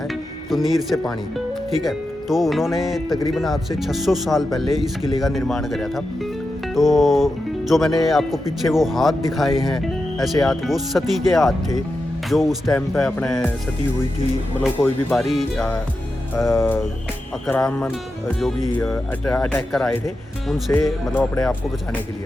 तो नीर से पानी, ठीक है। तो उन्होंने तकरीबन आज से 600 साल पहले इस किले का निर्माण कराया था। तो जो मैंने आपको पीछे वो हाथ दिखाए हैं, ऐसे हाथ, वो सती के हाथ थे जो उस टाइम पे अपने सती हुई थी। मतलब कोई भी बारी आक्रामण जो भी अटैक कर आए थे उनसे, मतलब अपने आप को बचाने के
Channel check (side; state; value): both; normal; correlation 0.90